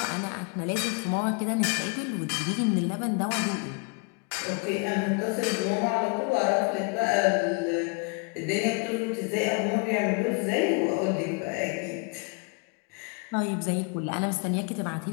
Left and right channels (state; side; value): quieter; right; 33.1 dB